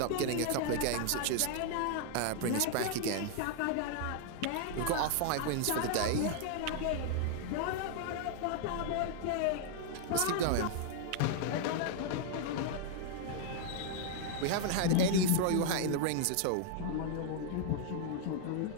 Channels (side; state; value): both; different; correlation 0.00